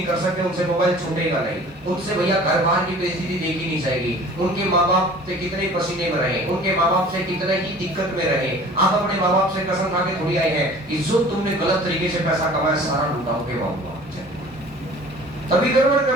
कर सकते, उनसे मोबाइल छूटेगा नहीं, उनसे भैया घर बाहर की परिस्थिति देखी नहीं जाएगी, उनके माँ बाप से कितने पसीने में रहे, उनके माँ बाप से कितने ही दिक्कत में रहे। आप अपने माँ बाप से कसम खा के थोड़ी आए हैं कि जो तुमने गलत तरीके से पैसा कमाया सारा लुटाओगे बाबू, तभी गड़बड़ कर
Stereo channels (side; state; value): both; normal; correlation 0.46